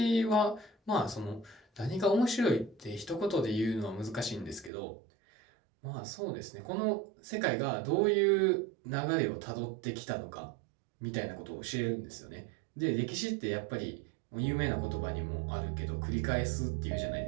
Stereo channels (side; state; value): left; drops out; at 4.7 s